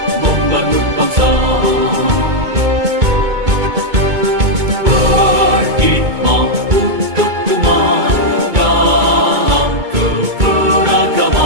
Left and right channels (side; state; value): left; late; 2.2 ms